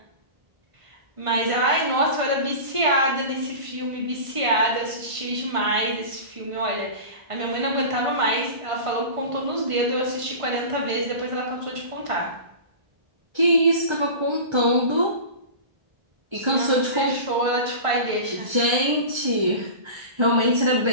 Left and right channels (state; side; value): late; left; 1.5 ms